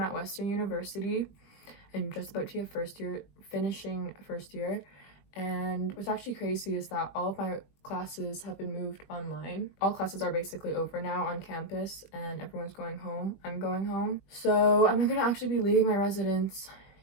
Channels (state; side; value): late; right; 20 ms